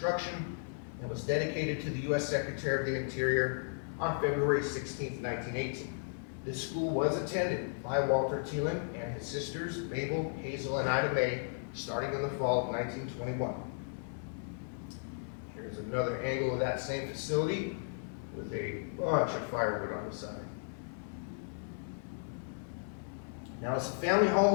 and was dedicated to the U.S. Secretary of the Interior on February 16th, 1918. This school was attended by Walter Teeland and his sisters, Mabel, Hazel, and Ida Mae, starting in the fall of 1921. Here's another angle of that same facility with a bunch of firewood on the side. Now, as the family home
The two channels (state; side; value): silent; right; 54 dB below the other